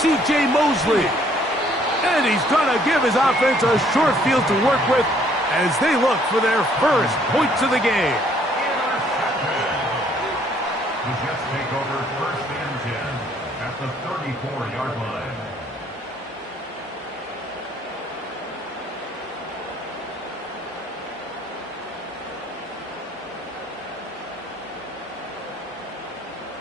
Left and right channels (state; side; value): normal; both; correlation 0.63